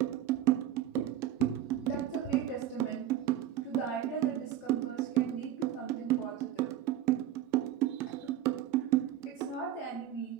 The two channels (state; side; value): quieter; left; 11.6 dB